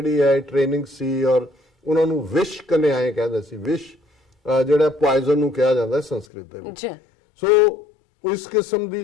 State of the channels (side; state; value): right; drops out; at 6.2 s